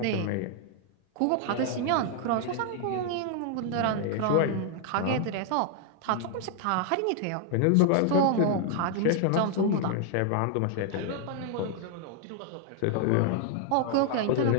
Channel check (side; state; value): both; different; correlation 0.00